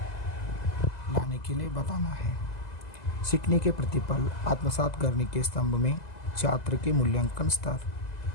लाने के लिए बताना है। सीखने के प्रतिफल आत्मसात करने के स्तंभ में छात्र के मूल्यांकन स्तर,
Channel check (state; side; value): late; right; 2.0 ms